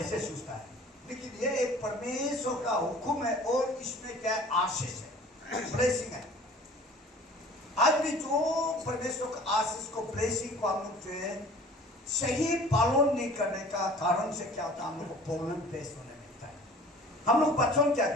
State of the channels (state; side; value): normal; both; correlation 0.47